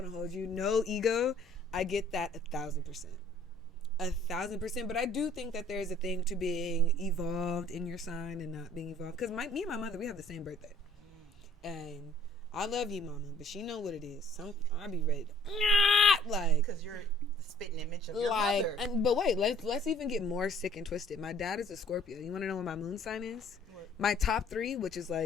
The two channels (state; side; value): normal; both; correlation 0.55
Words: hold you. No ego. I get that 1,000%. 1,000%, but I do think that there's a thing to being evolved in your sign and not being evolved. Because me and my mother, we have the same birthday, and I love you, mama, but she know what it is. I be ready to, like, because you're the spitting image of your mother. But wait, let's even get more sick and twisted. My dad is a Scorpio. You want to know what my moon sign is? What? My top 3, which is